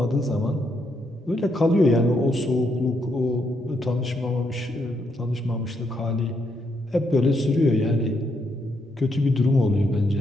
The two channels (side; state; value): both; normal; correlation 0.77